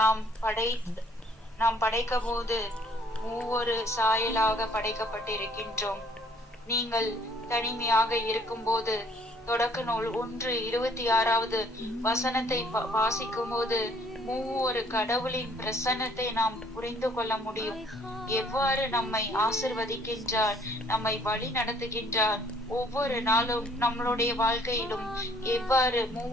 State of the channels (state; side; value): normal; both; correlation 0.61